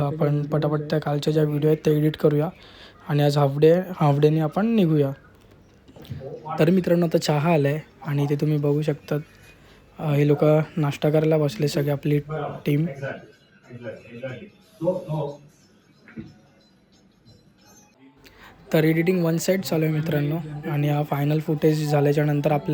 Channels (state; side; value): identical; both; correlation 1.00